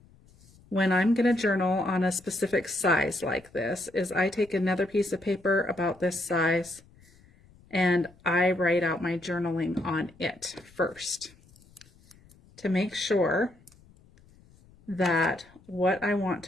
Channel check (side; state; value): left; noise; rumble, 27 dB below the sound